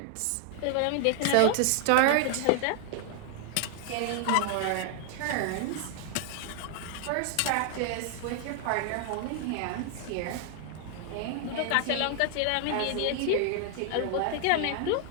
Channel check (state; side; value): different; both; correlation 0.00